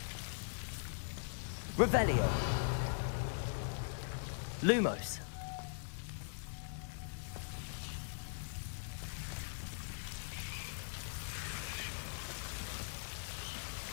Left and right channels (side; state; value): right; silent; digital silence